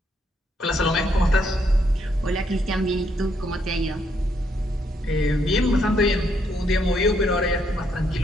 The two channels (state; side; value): normal; both; correlation 0.74